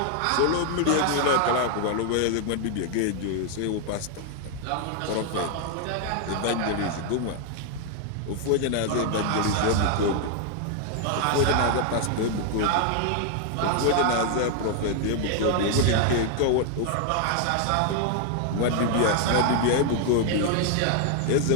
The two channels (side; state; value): both; different; correlation 0.00